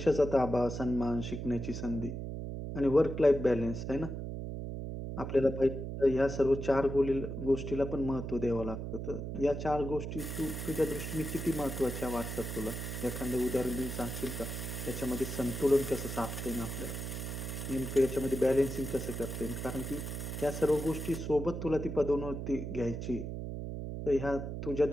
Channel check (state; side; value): noise; right; hum, 5 dB below the sound